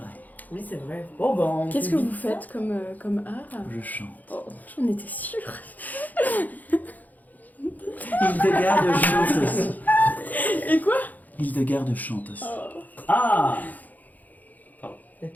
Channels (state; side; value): late; right; 0.081 ms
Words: Oui, c'est vrai. Bon, ben. Qu'est-ce que vous faites comme art? Je chante. Oh, j'en étais sûre. Hildegarde chante aussi. Et quoi? Hildegarde chante aussi. Ah Elle